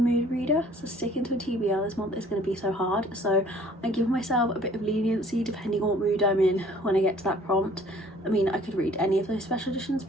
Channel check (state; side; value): normal; both; correlation 0.54